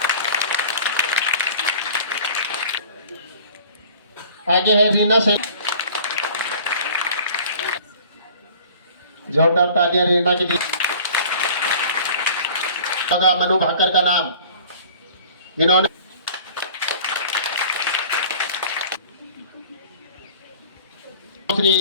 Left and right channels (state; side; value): inverted; both; correlation -0.46